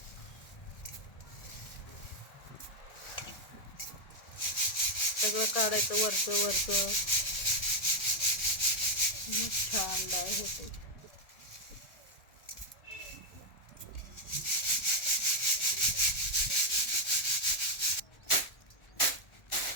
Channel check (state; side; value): late; right; 1.5 ms